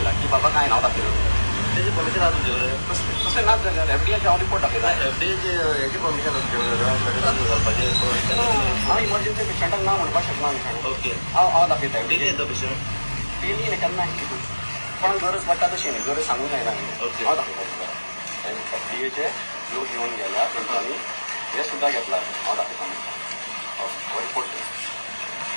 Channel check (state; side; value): inverted; both; correlation -1.00